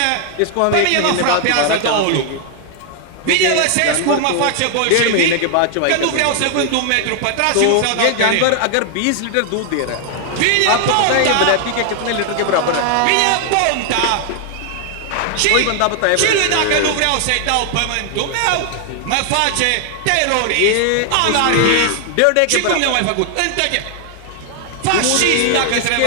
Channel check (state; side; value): different; both; correlation 0.00